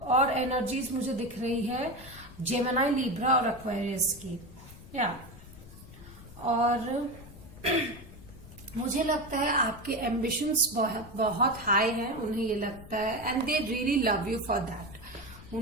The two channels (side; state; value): left; noise; rumble, 18 dB below the sound